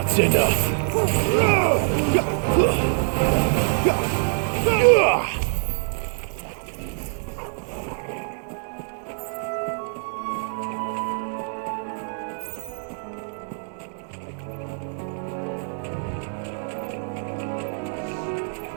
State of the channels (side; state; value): left; silent; 62 dB below the other